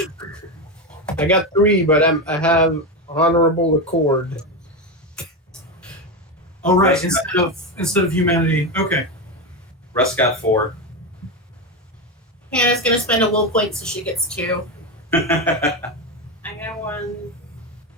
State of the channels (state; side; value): normal; both; correlation 0.14